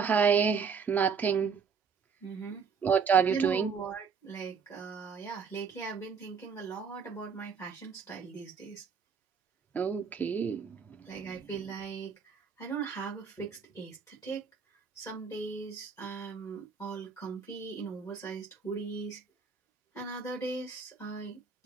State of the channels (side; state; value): left; quieter; 6.0 dB